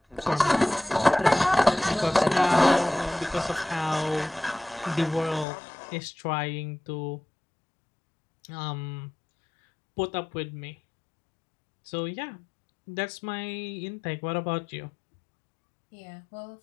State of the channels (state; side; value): drops out; right; at 5.5 s